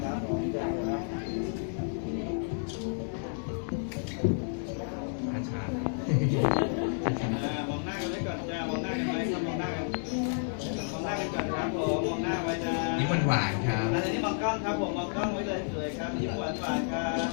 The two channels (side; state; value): right; silent; 57 dB below the other